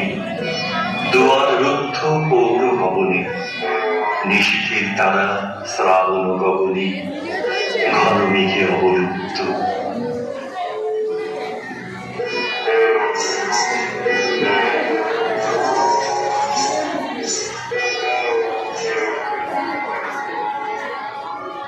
দুয়ার রুদ্ধ পৌর ভবনে, নিশীথের তারা শ্রাবণ গগনে, ঘন মেঘে অবলুপ্ত।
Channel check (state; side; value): identical; both; correlation 1.00